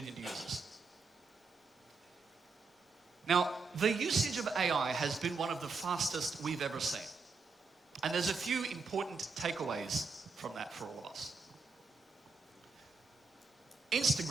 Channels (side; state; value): left; quieter; 4.5 dB